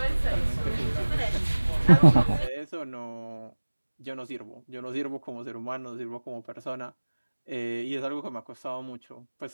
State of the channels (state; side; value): inverted; both; correlation -1.00